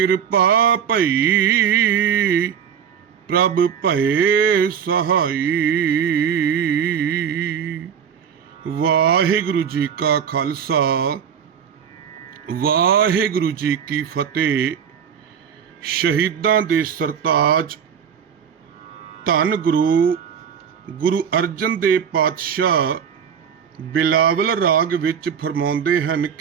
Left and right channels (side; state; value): left; quieter; 7.8 dB